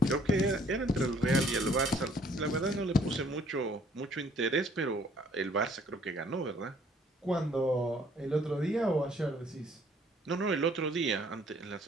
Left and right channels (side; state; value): both; normal; correlation 0.61